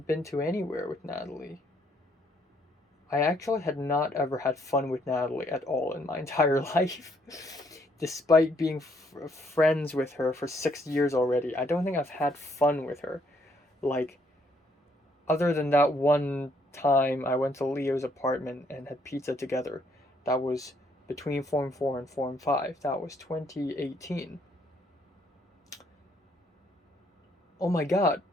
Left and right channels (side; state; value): both; normal; correlation 0.69